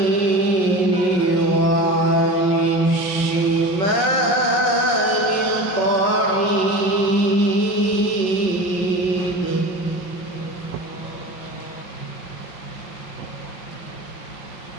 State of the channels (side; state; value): right; late; 5.4 ms